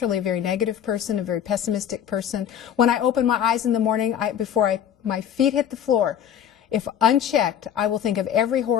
a very negative person, a very pessimistic person. When I open my eyes in the morning, before my feet hit the floor, if unchecked, I will think of every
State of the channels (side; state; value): right; quieter; 9.5 dB